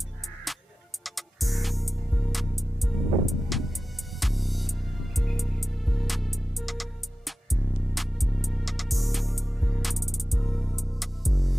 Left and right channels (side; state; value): both; normal; correlation 0.95